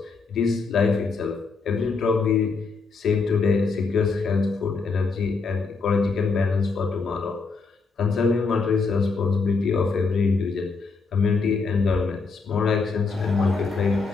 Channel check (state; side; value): quieter; right; 4.5 dB